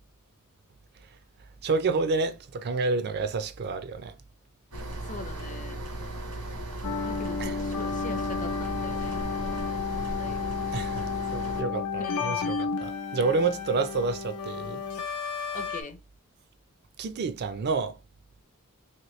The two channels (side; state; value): both; normal; correlation 0.06